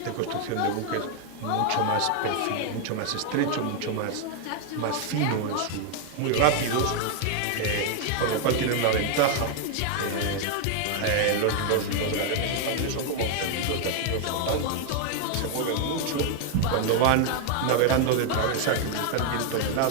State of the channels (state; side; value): different; both; correlation 0.00